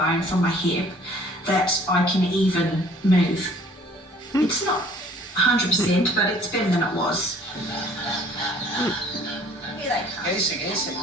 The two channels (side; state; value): both; normal; correlation 0.55